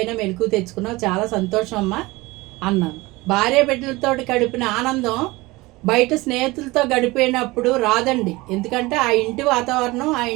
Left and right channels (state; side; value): quieter; left; 21.6 dB